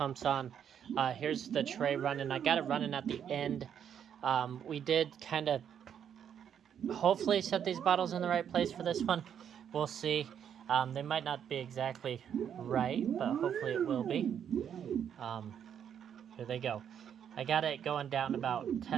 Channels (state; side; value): quieter; left; 8.7 dB